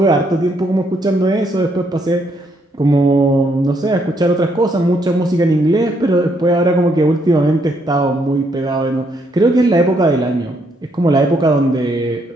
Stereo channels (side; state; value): both; normal; correlation 0.73